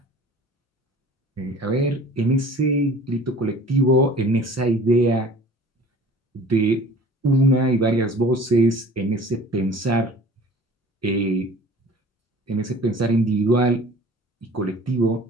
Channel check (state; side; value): normal; both; correlation 0.46